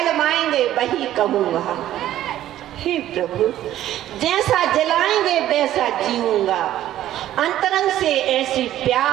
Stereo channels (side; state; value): left; quieter; 12.9 dB